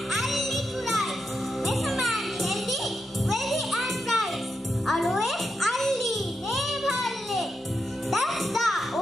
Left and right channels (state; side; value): normal; both; correlation 0.86